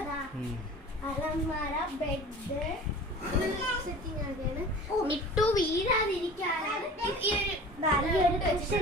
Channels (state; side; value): normal; both; correlation 0.41